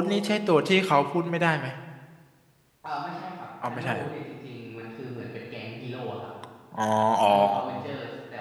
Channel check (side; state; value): both; identical; correlation 1.00